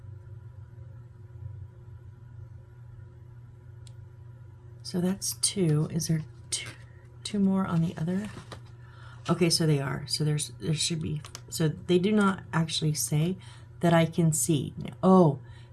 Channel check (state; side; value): identical; both; correlation 1.00